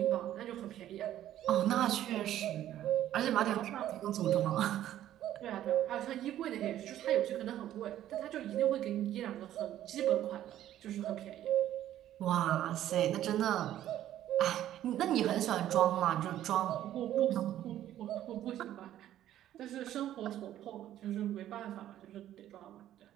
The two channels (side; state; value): left; quieter; 12.3 dB